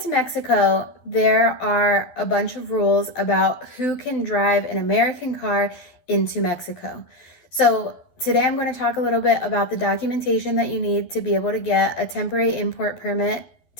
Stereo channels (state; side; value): late; right; 12 ms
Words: Mexico, there are a bunch of rules about who can drive an American car into Mexico. So today I'm going to talk a little bit about the documentation that you need to be able to get a temporary import permit